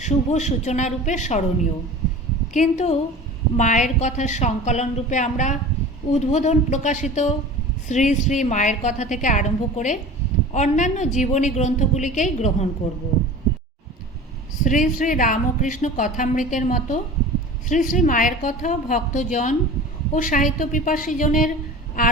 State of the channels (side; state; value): both; normal; correlation 0.37